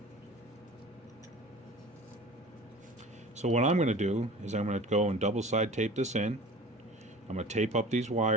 So what I'm going to do is I'm going to go and double side tape this in. I'm going to tape up these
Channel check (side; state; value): both; normal; correlation 0.40